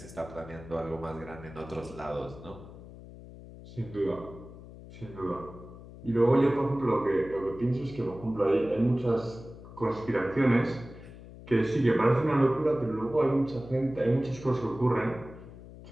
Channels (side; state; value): left; noise; hum, 16 dB below the sound